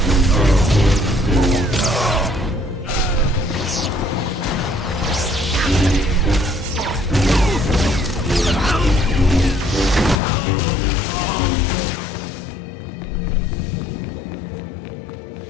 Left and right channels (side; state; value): right; drops out; at 10.2 s